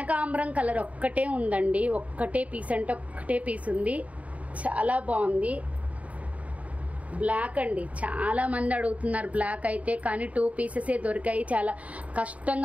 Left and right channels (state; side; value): late; left; 0.068 ms